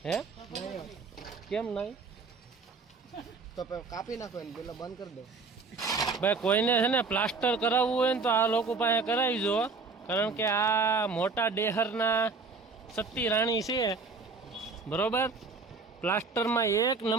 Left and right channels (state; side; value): quieter; left; 4.3 dB